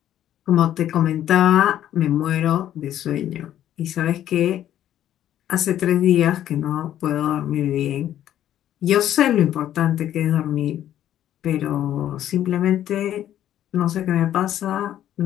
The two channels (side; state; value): right; quieter; 11.5 dB